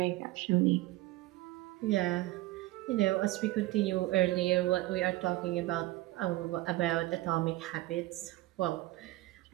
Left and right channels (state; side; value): quieter; left; 18.3 dB